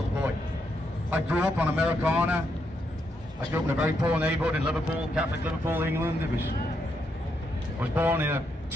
boy. I grew up on Americana. I grew up in a very poor neighborhood in Liverpool, Catholic Liverpool, England. I was born in a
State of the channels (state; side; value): normal; both; correlation 0.79